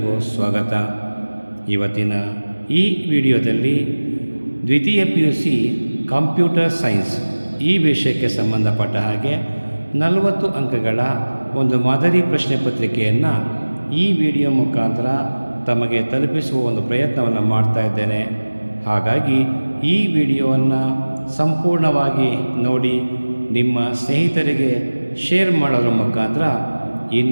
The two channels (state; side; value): inverted; both; correlation -1.00